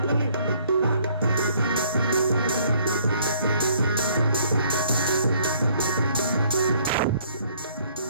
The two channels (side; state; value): both; inverted; correlation -0.61